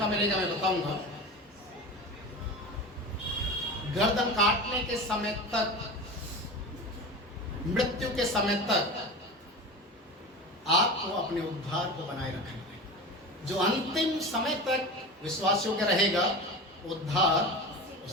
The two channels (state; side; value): normal; both; correlation 0.30